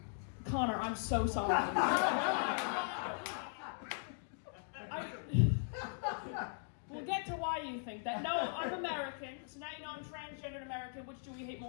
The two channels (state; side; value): silent; right; digital silence